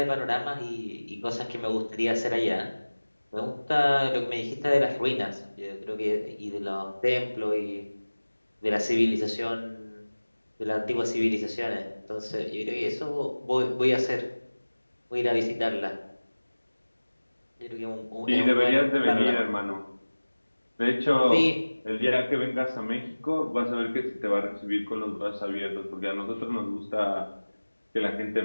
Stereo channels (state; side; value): inverted; both; correlation -1.00